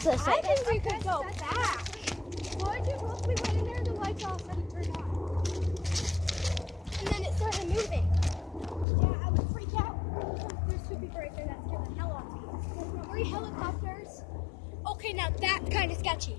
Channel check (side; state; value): right; drops out; at 8.8 s